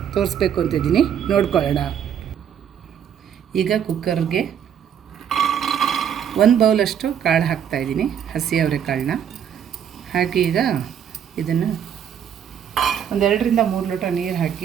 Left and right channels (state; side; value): quieter; left; 8.8 dB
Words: ತೋರಿಸ್ಬೇಕು ಅಂತಿದ್ದೀನಿ, ನೋಡ್ಕೊಳ್ಳೋಣ. ಈಗ ಕುಕ್ಕರ್ಗೆ 1 ಬೌಲಷ್ಟು ಕಾಳು ಹಾಕ್ತಾಯಿದ್ದೀನಿ, ಹಸಿ ಅವರೆಕಾಳನ್ನ ಹಾಕಿ ಈಗ ಇದನ್ನು 2 ರಿಂದ 3 ಲೋಟ ನೀರು